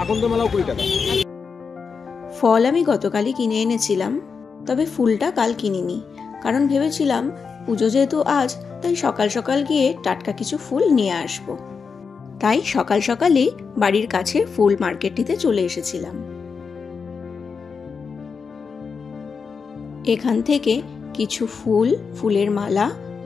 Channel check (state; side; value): quieter; right; 5.5 dB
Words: আকন্দ মালাও 20 টাকা। ফল আমি গতকালই কিনে এনেছিলাম, তবে ফুলটা কাল কিনিনি, কারণ ভেবেছিলাম পুজো যেহেতু আজ, তাই সকাল সকাল গিয়ে টাটকা কিছু ফুল নিয়ে আসব। তাই সকাল সকালই বাড়ির কাছে ফুল মার্কেটটিতে চলে এসেছিলাম। এখান থেকে কিছু ফুলের মালা,